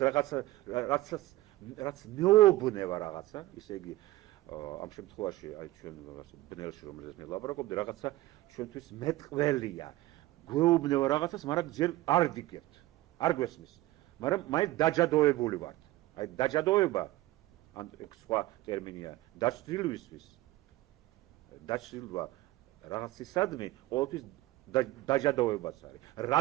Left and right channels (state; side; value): quieter; left; 17.0 dB